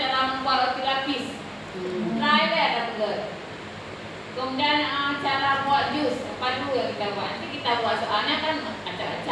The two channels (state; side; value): identical; both; correlation 1.00